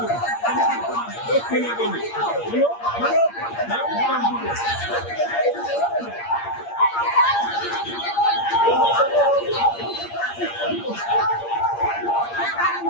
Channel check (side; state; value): right; late; 8.6 ms